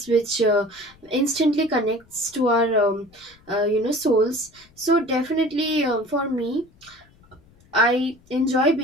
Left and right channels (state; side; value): noise; left; rumble, 29 dB below the sound